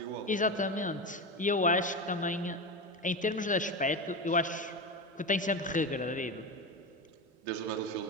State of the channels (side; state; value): both; normal; correlation 0.20